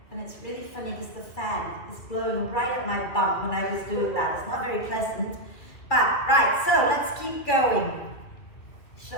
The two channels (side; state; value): right; late; 2.5 ms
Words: And it's really funny because the fan is blowing right at my bum when I was doing that. It's not very pleasant. But, right, so let's keep going.